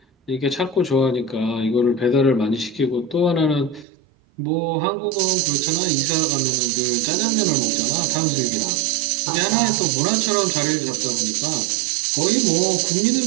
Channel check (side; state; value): left; drops out; at 3.9 s